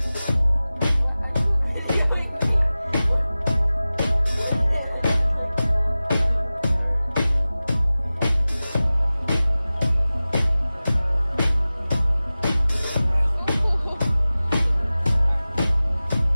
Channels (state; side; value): inverted; both; correlation -0.97